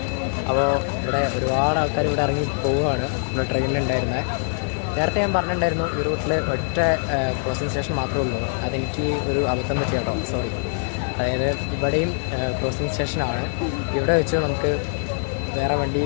അപ്പോൾ ഇവിടെ ഒരുപാട് ആൾക്കാർ ഇവിടെ ഇറങ്ങി പോവുകയാണ്. ഇവിടെ ട്രെയിനിലുണ്ടായിരുന്നത്. നേരത്തെ ഞാൻ പറഞ്ഞിട്ടുണ്ടായിരുന്നു ഈ റൂട്ടിൽ ഒറ്റ ക്രോസിംഗ് സ്റ്റേഷൻ മാത്രമേ ഉള്ളൂ. അതെനിക്ക് ഒരു അബദ്ധം പറ്റി കേട്ടോ, സോറി. അതായത് ഇവിടെയും ക്രോസിംഗ് സ്റ്റേഷനാണ്. ഇവിടെ വെച്ച് നമുക്ക് വേറെ വണ്ടി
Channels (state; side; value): silent; right; digital silence